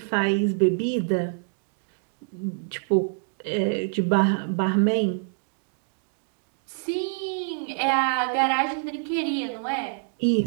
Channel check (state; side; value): silent; left; 61 dB below the other